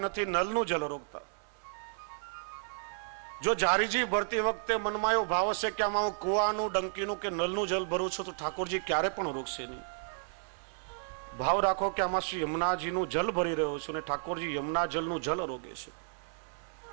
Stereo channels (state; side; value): silent; left; 56 dB below the other